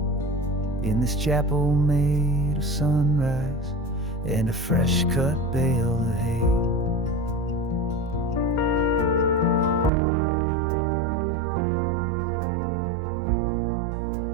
in this chapel made of sunrise and a fresh cut bale of hay.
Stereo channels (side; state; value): left; drops out; at 9.9 s